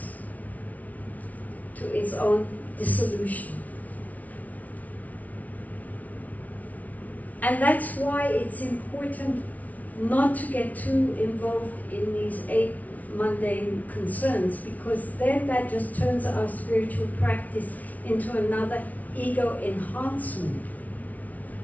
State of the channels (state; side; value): late; right; 0.072 ms